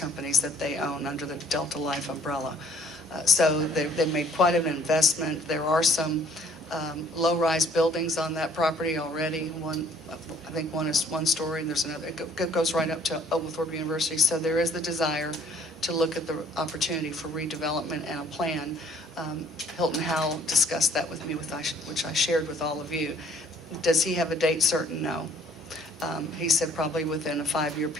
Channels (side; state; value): both; normal; correlation 0.59